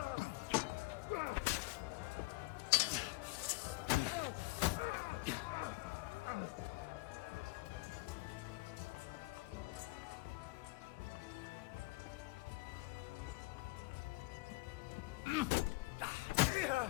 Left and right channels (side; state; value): right; quieter; 23.1 dB